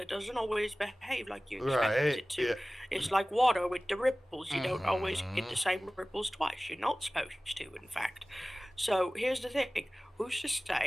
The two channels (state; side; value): normal; both; correlation 0.98